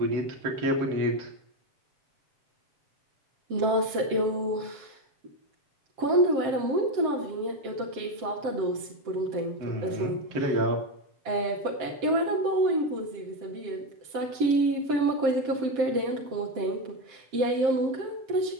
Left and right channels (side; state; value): left; late; 7.5 ms